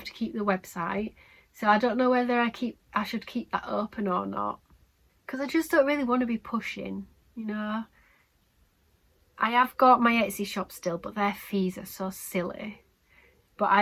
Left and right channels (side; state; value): both; identical; correlation 1.00